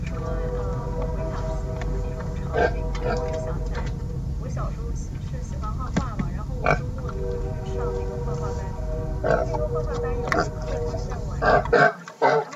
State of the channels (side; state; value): both; identical; correlation 1.00